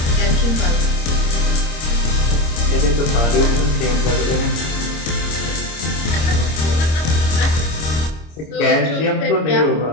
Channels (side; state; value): right; late; 26 ms